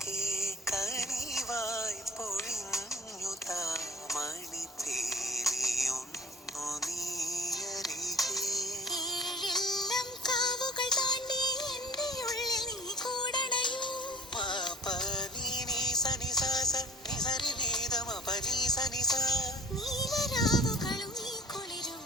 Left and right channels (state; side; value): normal; both; correlation 0.47